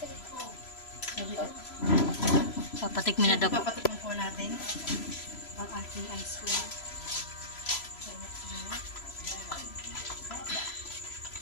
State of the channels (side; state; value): right; late; 3.0 ms